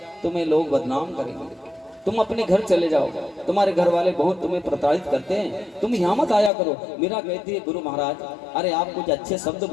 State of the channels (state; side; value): drops out; right; at 6.5 s